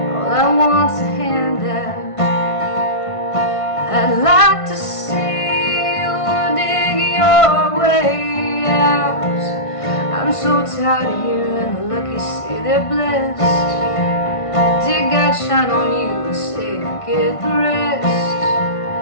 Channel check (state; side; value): late; right; 1.5 ms